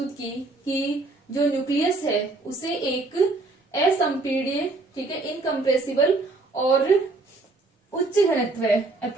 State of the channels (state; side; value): quieter; left; 3.3 dB